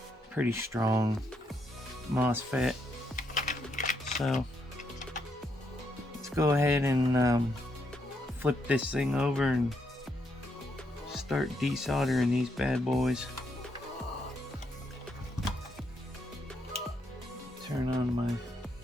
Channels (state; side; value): normal; both; correlation 0.78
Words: pretty strong MOSFET. So let's go ahead and flip this thing over and start desoldering these bad boys. Turn on my